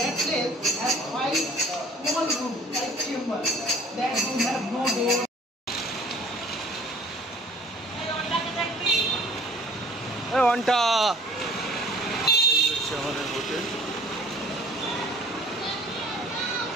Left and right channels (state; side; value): normal; both; correlation 0.51